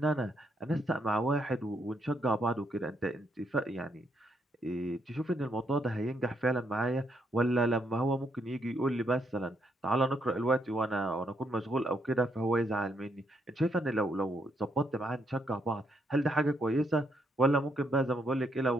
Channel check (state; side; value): normal; both; correlation 0.76